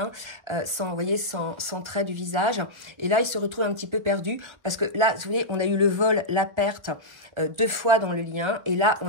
vous voyez, sans trait du visage. Et là, il se retrouve un petit peu perdu parce que là, vous voyez, on a eu le vol, la perte 2 fois dans le lien. Et là,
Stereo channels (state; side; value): late; left; 1.3 ms